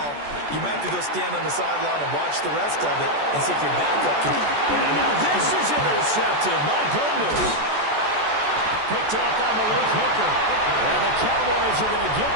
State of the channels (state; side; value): late; left; 14 ms